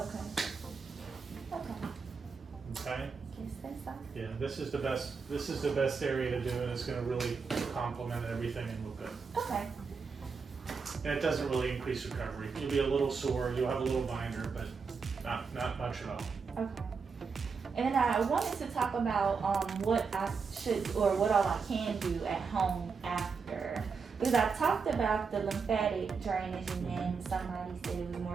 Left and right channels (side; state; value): left; quieter; 5.3 dB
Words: Okay. Say so. Yeah. This is the best area to do, and it's going to really complement everything and look good. Okay. And it doesn't really increase recovery. You'll be a little sore. You'll have a little binder, but not much at all. Okay. And then I wanted to talk about what I should or what all I can do at home after. Because I talked about the lymphatic drainage, and then somebody said it was